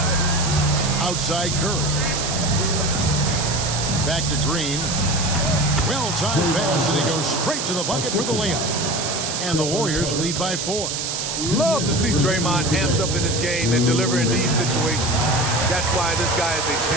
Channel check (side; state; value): right; noise; hiss, 3 dB below the sound